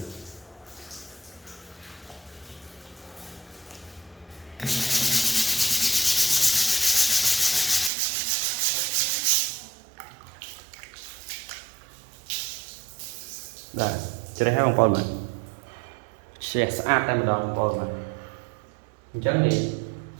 បាទជ្រះហើយបងប្អូនបាទជ្រះស្អាតតែម្ដងបងប្អូនបាទអញ្ចឹងនេះ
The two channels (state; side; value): drops out; left; at 7.9 s